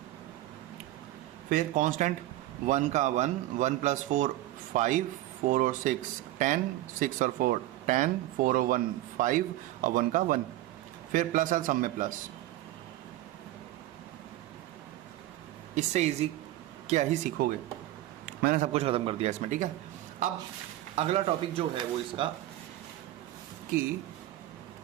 फिर कांस्टेंट 1 का 1, 1 + 4 5, 4 और 6 10, 6 और 4 10, 4 और 1 5 और 1 का 1। फिर प्लस है, सब में प्लस। इससे इजी क्या ही सीखोगे। मैंने सब कुछ खत्म कर दिया इसमें। ठीक है, अब अगला टॉपिक जो है वो इसका कि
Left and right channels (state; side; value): quieter; left; 15.3 dB